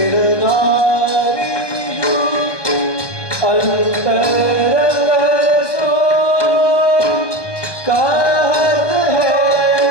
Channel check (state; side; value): late; right; 1.2 ms